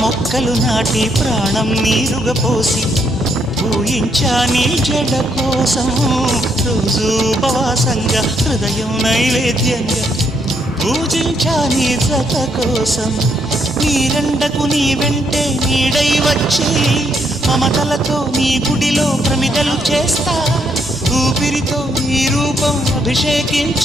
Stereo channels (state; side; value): normal; both; correlation 0.74